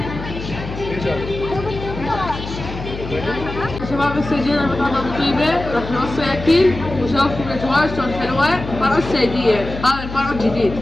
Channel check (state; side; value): noise; left; hum, 9 dB below the sound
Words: شباب هسه جينا مطعم ابو طيبه، راح نوصي اكل وشوفكم الاجواء شلون حلوه. فرع السيديه، هذا الفرع الجديد.